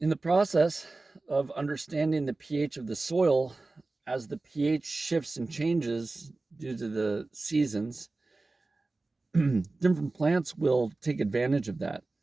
the process of understanding the pH of the soil, as the pH shifts and changes due to the seasons, different plants will take advantage of that.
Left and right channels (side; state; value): left; quieter; 3.3 dB